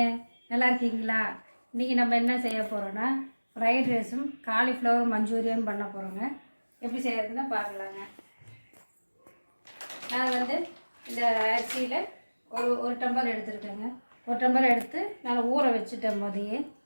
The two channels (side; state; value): both; inverted; correlation -1.00